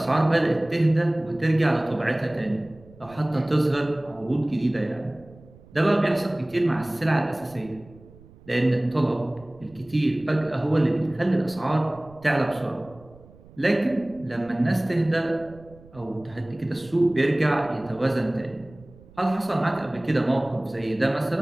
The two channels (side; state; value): right; noise; rumble, 23 dB below the sound